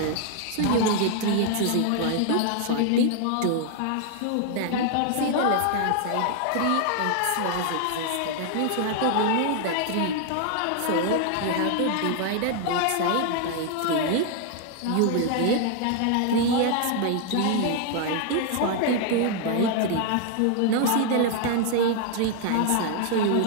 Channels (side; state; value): both; different; correlation 0.00